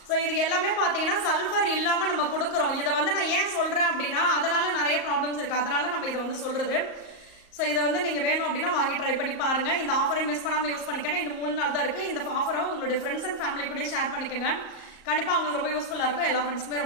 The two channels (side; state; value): right; late; 38 ms